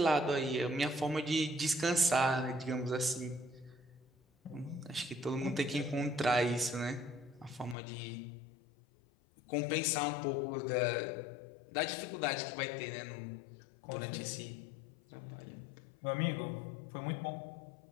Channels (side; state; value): right; drops out; at 7.8 s